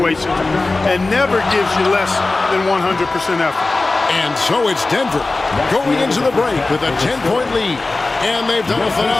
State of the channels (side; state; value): right; quieter; 3.3 dB